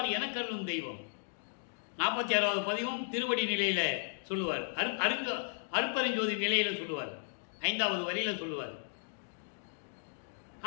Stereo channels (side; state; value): right; silent; digital silence